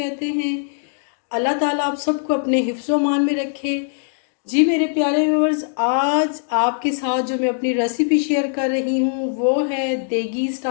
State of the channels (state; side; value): silent; right; digital silence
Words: हैं। अल्लाह ताला आप सबको अपने हिफ्ज़ मान में रखे। जी मेरे प्यारे व्यूअर्स, आज आपके साथ जो मैं अपनी रेसिपी शेयर कर रही हूँ वो है देगी